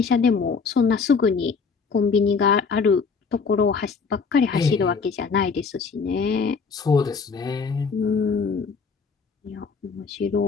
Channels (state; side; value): quieter; right; 5.2 dB